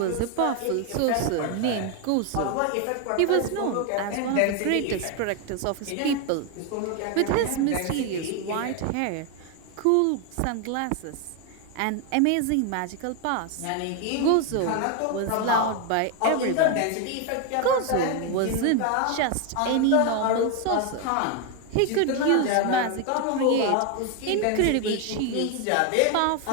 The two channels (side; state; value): both; different; correlation 0.01